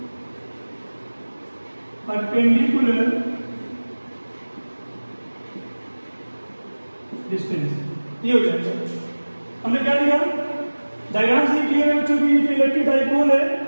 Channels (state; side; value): inverted; both; correlation -1.00